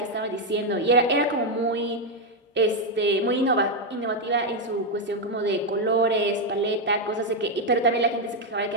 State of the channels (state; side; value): normal; both; correlation 0.03